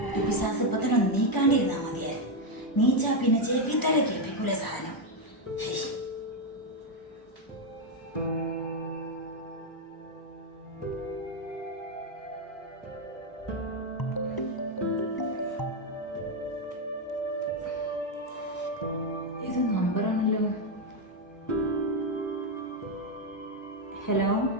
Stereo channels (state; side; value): late; right; 1.0 ms